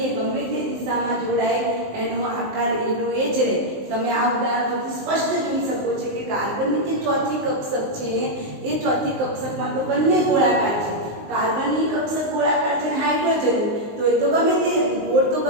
એ ગમે તે દિશામાં જોડાય એનો આકાર એનો એ જ રહે. તમે આ ઉદાહરણ પરથી સ્પષ્ટ જોઈ શકો છો કે કાર્બનની જે ચોથી કક્ષક છે એ ચોથી કક્ષકમાં તો બંને ગોળાકાર છે. કાર્બનની કક્ષક ગોળાકાર છે, હાઇડ્રોજન તો એ તો ગમે તે ગોળ તો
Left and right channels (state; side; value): late; left; 19 ms